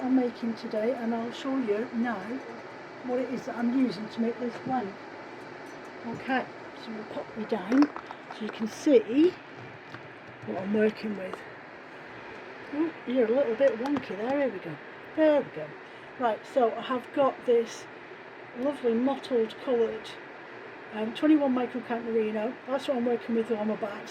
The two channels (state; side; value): identical; both; correlation 1.00